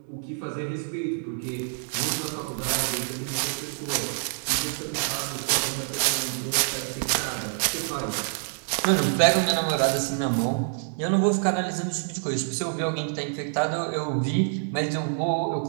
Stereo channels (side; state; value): left; silent; 60 dB below the other